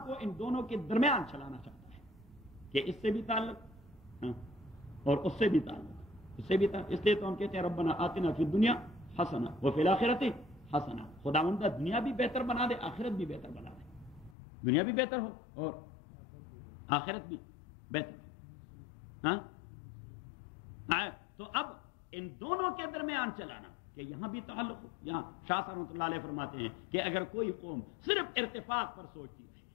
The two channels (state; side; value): drops out; right; at 14.4 s